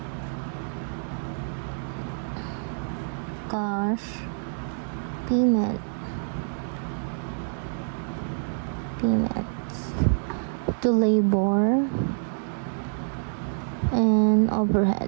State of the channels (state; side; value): silent; left; digital silence